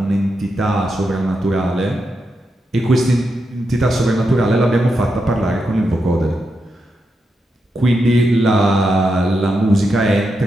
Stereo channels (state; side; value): normal; both; correlation 0.85